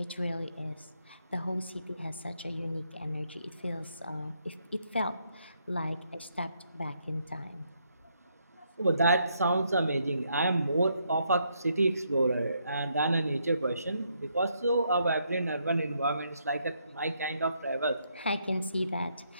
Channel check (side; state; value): both; inverted; correlation -0.75